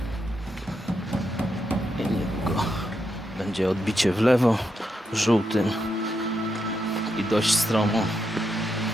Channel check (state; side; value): normal; both; correlation 0.83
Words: i niedługo będzie odbicie w lewo żółtym i dość stromo.